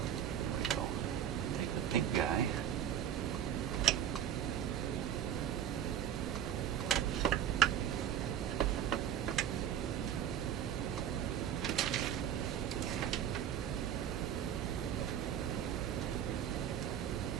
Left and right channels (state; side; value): quieter; left; 9.8 dB